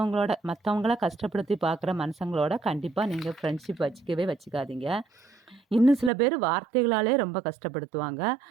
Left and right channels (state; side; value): drops out; left; at 6.1 s